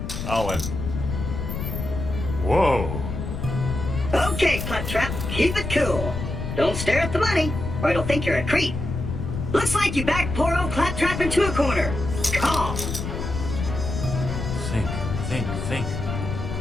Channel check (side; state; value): left; noise; rumble, 5 dB below the sound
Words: Owen. Whoa. Okay, Claptrap, keep it cool. Don't stare at the money, or it'll think you're a creep. Looks like you backed poor old Claptrap into a corner. Call. Think.